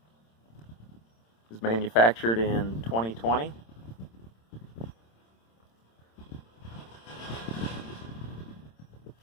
It was manufactured in 2020.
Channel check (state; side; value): late; right; 26 ms